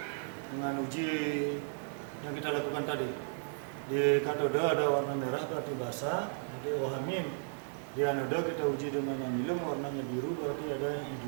dengan uji yang kita lakukan tadi. Di katode ada warna merah berarti basa, jadi OH-. Di anoda kita uji dengan anilum warnanya biru berarti ada I2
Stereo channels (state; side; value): silent; left; digital silence